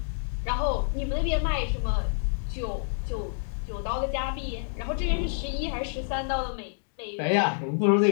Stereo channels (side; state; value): right; silent; digital silence